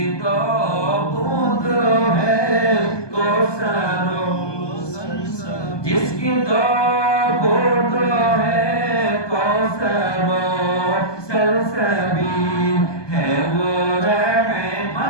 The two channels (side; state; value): right; late; 1.2 ms